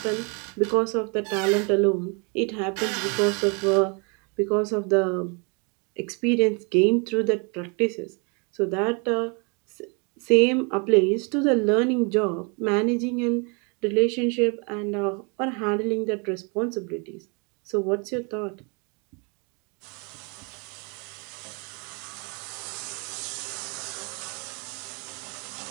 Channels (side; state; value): left; quieter; 33.8 dB